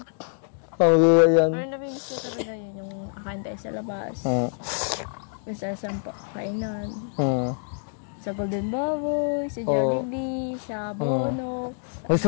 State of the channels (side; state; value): right; silent; digital silence